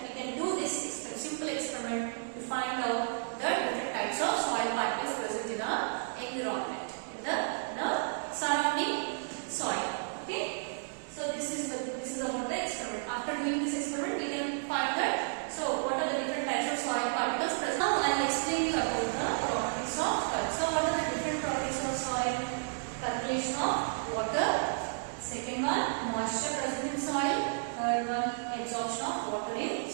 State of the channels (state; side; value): silent; left; digital silence